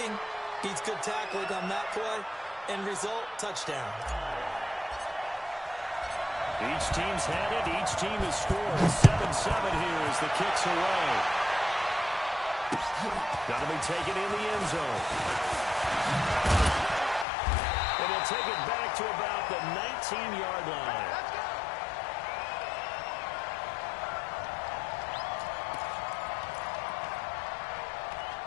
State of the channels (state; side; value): drops out; right; at 17.2 s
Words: beats good tackling on that play. End result, touchdown. Each team's had it. Each team has scored. 7-7 here as the kick's away. Got to be taken in the end zone. And he'll take it back to about the 19-yard line.